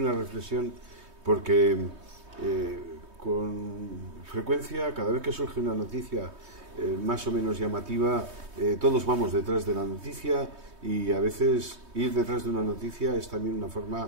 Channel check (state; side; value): late; left; 3.2 ms